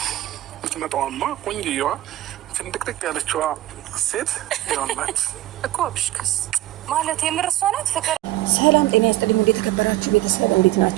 ምትመጣዋማ ቆንጆዋ ፍንድቅድቅ ያለችዋ ሴት ይሆናት እኮ አብሽከስ ማለት የምርሷ ናት። ፍቅር ሰላም ጤና ይስጥልኝ። እንዴት ተከበራችሁ ቤተሰብ እንዴት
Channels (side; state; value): left; quieter; 15.4 dB